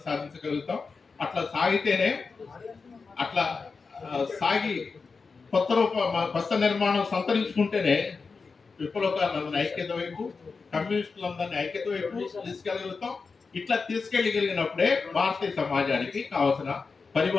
సాధించగలుగుతాం. అట్లా సాగితేనే సాగి కొత్త నిర్మాణం సంతరించుకుంటేనే విప్లవకారులందరినీ ఐక్యత వైపు, కమ్యూనిస్టులందరినీ ఐక్యత వైపు తీసుకెళ్ళగలుగుతాం. ఇట్లా తీసుకెళ్ళగలిగినప్పుడే భారతీయ సమాజానికి కావాల్సిన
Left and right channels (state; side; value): quieter; right; 4.7 dB